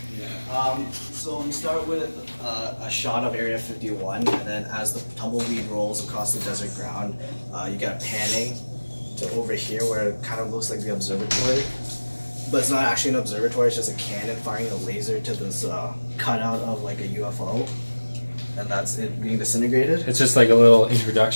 So we start with a shot of Area 51, and then as the tumbleweed rolls across the desert ground, you get a panning to over here where it kind of looks like the observatory. But it's not actually an observatory, it's just a cannon firing a laser to this cutout of like a UFO. And that's it being disintegrated. It's just like a little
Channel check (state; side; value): inverted; both; correlation -1.00